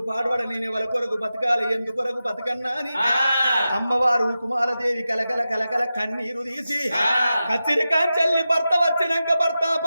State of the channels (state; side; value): inverted; both; correlation -0.93